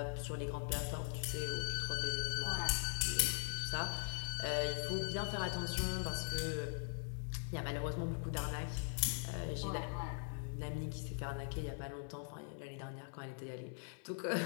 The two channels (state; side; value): silent; right; 50 dB below the other